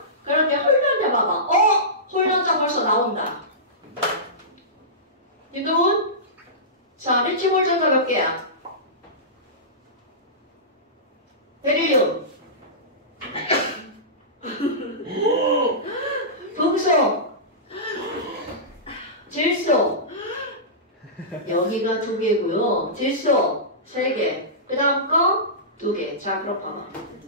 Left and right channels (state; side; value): normal; both; correlation -0.19